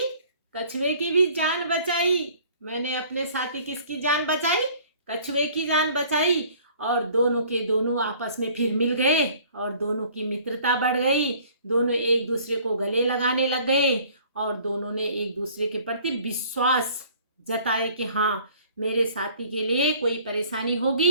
कछुए की भी जान बचाई। मैंने अपने साथी किसकी जान बचाई? कछुए की जान बचाई। और दोनों के दोनों आपस में फिर मिल गए और दोनों की मित्रता बढ़ गई। दोनों एक दूसरे को गले लगाने लग गए और दोनों ने एक दूसरे के प्रति विश्वास जताए कि हाँ, मेरे साथी के लिए कोई परेशानी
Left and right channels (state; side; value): inverted; both; correlation -0.54